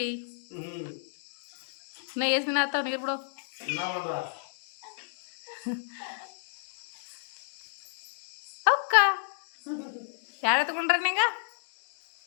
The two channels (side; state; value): right; silent; digital silence